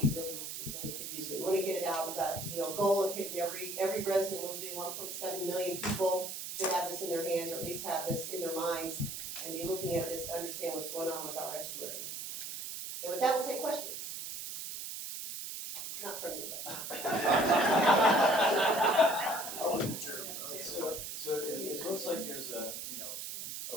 we really could use it. We want to get it out. We've got a goal of hitting every resident in the lagoon. 1.7 million people should have this in their hands, or at least have this in their minds, and be looking at this to understand what's going on with our estuaries. And with that, we'll take questions. Not from you, So it looks like there's a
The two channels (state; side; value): noise; right; hiss, 6 dB below the sound